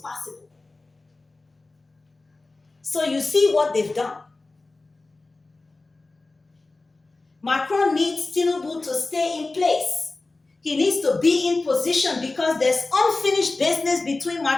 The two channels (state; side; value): quieter; right; 3.3 dB